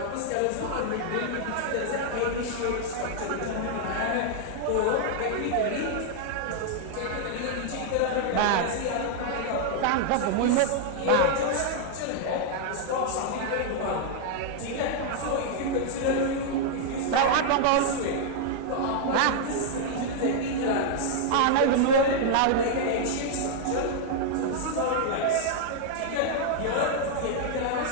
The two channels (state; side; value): different; both; correlation 0.00